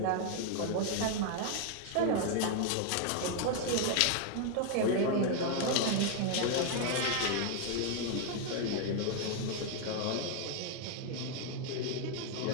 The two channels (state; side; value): different; both; correlation 0.00